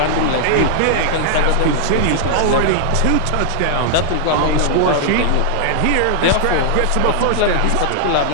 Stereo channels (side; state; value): both; different; correlation 0.00